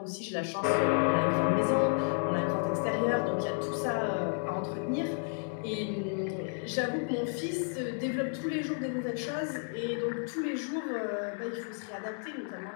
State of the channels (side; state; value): right; silent; 57 dB below the other